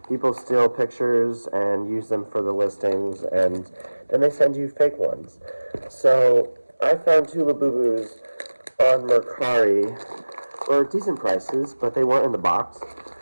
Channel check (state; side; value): inverted; both; correlation -1.00